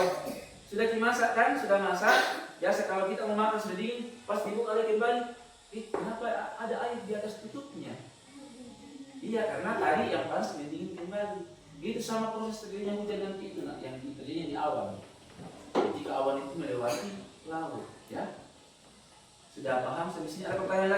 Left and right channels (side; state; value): both; identical; correlation 1.00